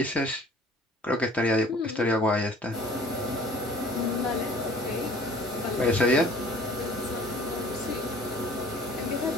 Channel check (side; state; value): both; normal; correlation 0.50